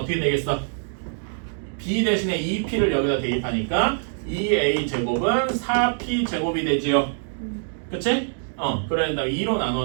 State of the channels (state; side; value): silent; left; digital silence